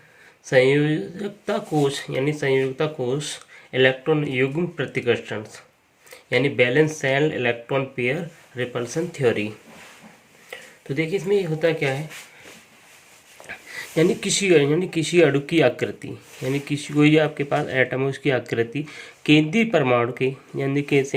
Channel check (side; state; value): both; identical; correlation 1.00